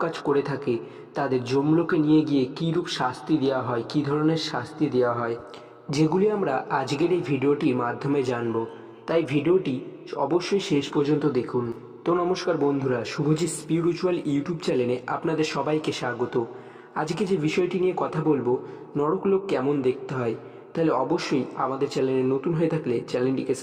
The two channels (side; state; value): both; identical; correlation 1.00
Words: কাজ করে থাকে তাদের যমলোকে নিয়ে গিয়ে কীরূপ শাস্তি দেওয়া হয়, কী ধরনের শাস্তি দেওয়া হয়, যেগুলি আমরা আজকের এই ভিডিওটির মাধ্যমে জানব। তাই ভিডিওটি অবশ্যই শেষ পর্যন্ত দেখুন। তো নমস্কার বন্ধুরা, শুভজিৎ স্পিরিচুয়াল ইউটিউব চ্যানেলে আপনাদের সবাইকে স্বাগত। আজকে যে বিষয়টি নিয়ে কথা বলবো, নরকলোক কেমন দেখতে হয়, তাহলে অবশ্যই আমাদের চ্যানেলে নতুন হয়ে থাকলে চ্যানেলটিকে